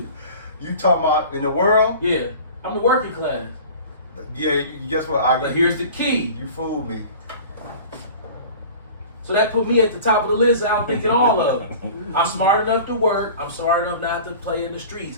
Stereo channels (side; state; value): both; inverted; correlation -0.40